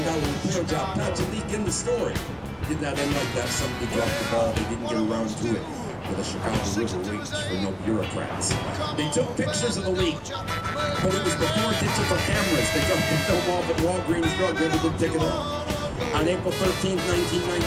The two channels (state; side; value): identical; both; correlation 1.00